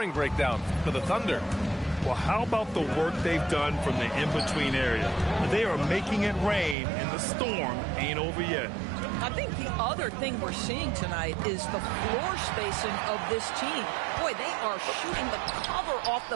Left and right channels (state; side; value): drops out; left; at 6.8 s